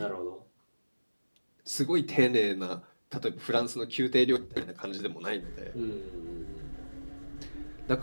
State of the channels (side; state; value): both; inverted; correlation -1.00